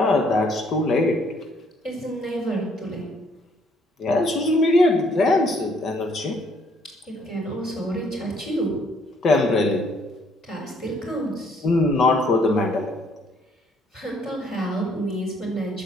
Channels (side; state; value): both; normal; correlation 0.65